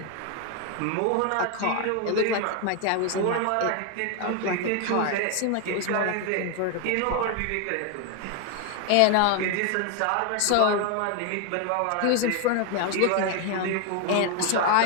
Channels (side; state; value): both; different; correlation 0.01